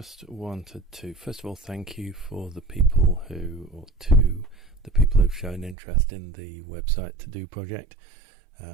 wanted to first of all thank you for the people who've shown interest in the website to do project.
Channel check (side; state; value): left; drops out; at 5.8 s